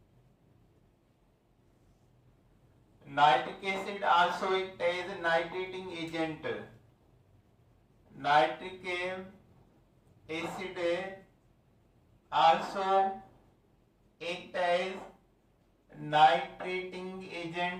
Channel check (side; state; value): both; identical; correlation 1.00